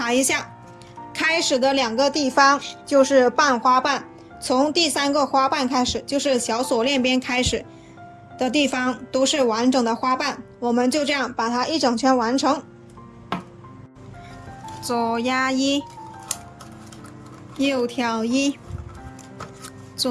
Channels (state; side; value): identical; both; correlation 1.00